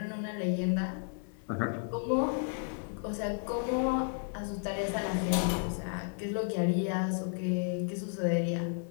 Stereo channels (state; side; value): silent; right; 56 dB below the other